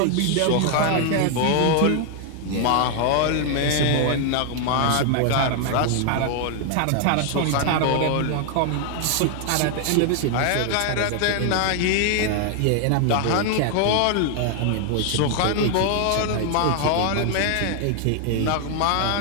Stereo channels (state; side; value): different; both; correlation 0.00